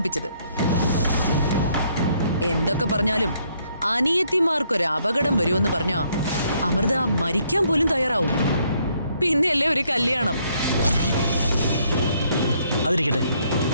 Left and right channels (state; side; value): inverted; both; correlation -0.69